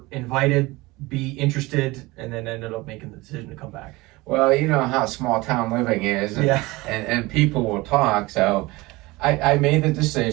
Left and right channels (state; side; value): quieter; left; 21.7 dB